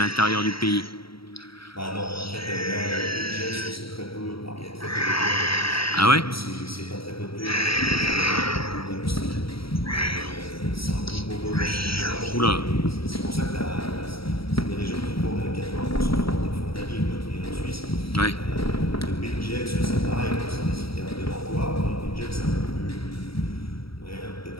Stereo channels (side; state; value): right; late; 0.75 ms